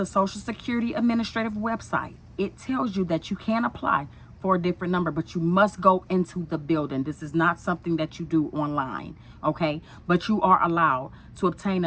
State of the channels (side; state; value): both; identical; correlation 1.00